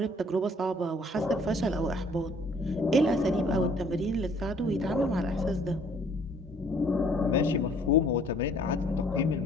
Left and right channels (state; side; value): normal; both; correlation 0.59